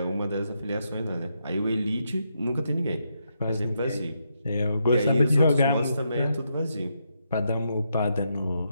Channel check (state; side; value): inverted; both; correlation -0.81